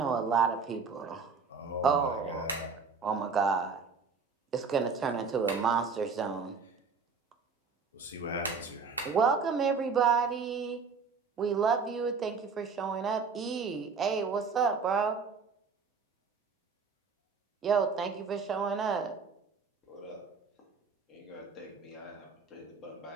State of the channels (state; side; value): quieter; left; 5.2 dB